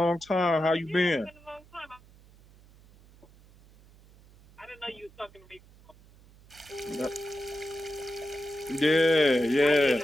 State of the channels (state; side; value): noise; right; hum, 26 dB below the sound